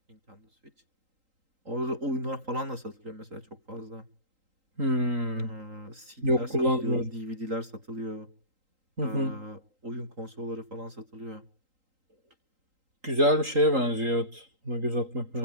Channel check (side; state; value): left; late; 3.8 ms